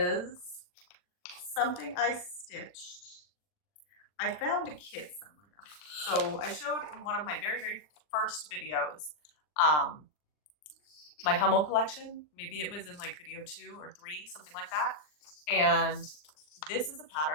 something I stitched. I found a kit somewhere. So I showed in one of my very, very first videos, my Hummel collection. Maybe it was in like video 2 or 3, something like that. And this is a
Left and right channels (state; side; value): late; right; 40 ms